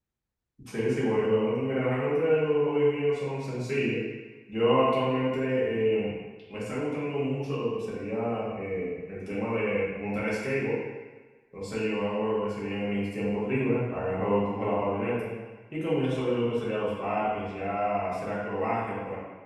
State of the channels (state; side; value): identical; both; correlation 1.00